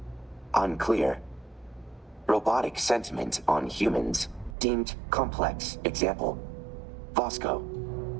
Unclear. Robotic sentiment on humans deemed complex. Example. Vasco.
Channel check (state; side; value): drops out; left; at 4.5 s